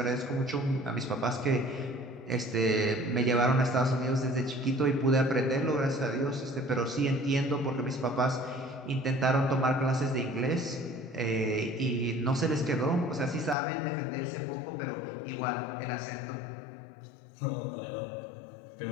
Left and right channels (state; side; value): drops out; right; at 13.6 s